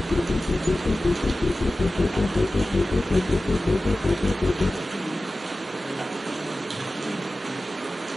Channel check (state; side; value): normal; both; correlation 0.96